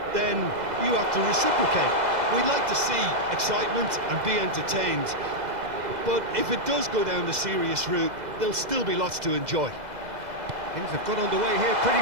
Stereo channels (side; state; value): left; late; 2.0 ms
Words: then you have to reciprocate. We'd like to see excitement and be entertained, but if it does go down the serious route, there'll still be lots to enjoy. Things have got underway here pretty